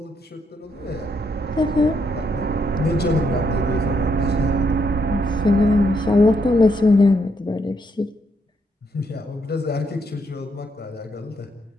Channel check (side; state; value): both; normal; correlation 0.76